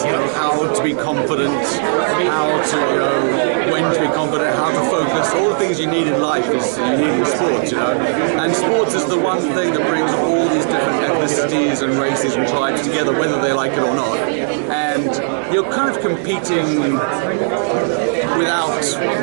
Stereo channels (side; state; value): left; silent; digital silence